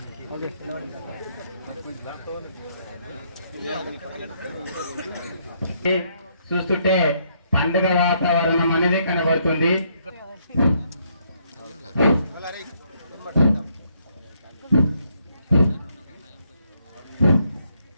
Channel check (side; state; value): both; inverted; correlation -0.72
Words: ఓకే చూస్తుంటే పండుగ వాతావరణం అనేది కనబడుతుంది.